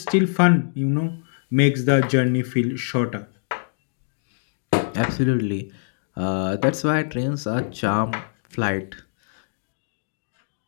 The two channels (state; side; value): silent; right; digital silence